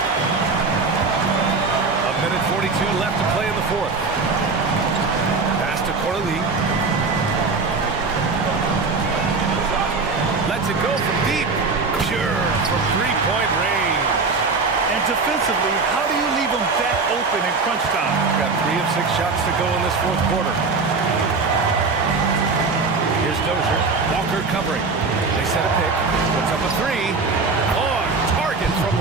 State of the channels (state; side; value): quieter; left; 4.2 dB